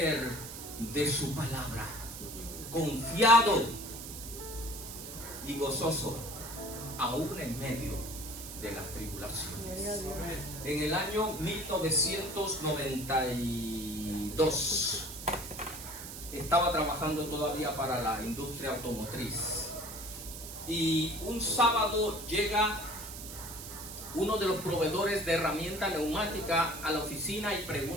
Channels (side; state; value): right; noise; hiss, 10 dB below the sound